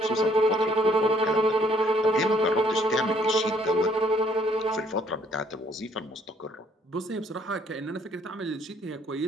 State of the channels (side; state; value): both; normal; correlation 0.64